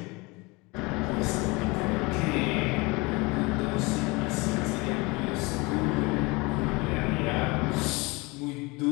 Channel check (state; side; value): quieter; right; 25.4 dB